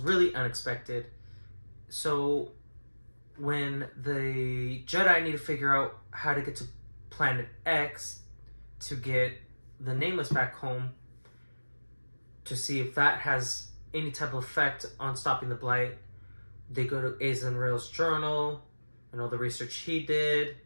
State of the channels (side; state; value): both; inverted; correlation -1.00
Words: unexpected. So when the Jedi need to figure out how to get to Planet X to get the Nameless back home, to see if that has any type of effect on stopping the Blight, they go to Azen Rail's journal and all the research he did